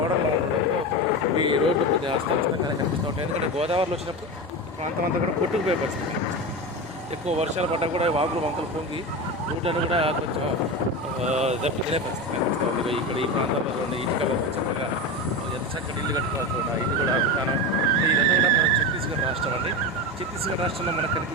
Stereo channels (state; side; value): normal; both; correlation 0.22